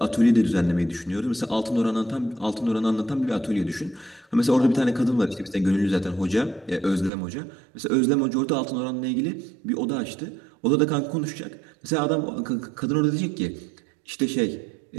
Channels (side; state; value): left; drops out; at 7.1 s